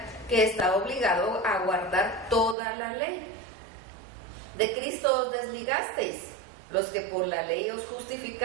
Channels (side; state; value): left; drops out; at 2.6 s